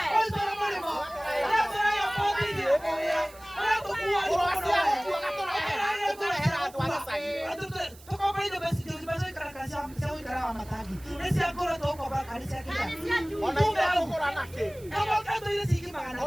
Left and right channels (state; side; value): noise; right; hiss, 22 dB below the sound